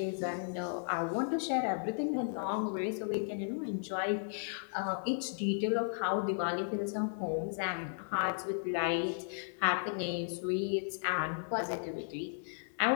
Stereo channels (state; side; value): silent; right; digital silence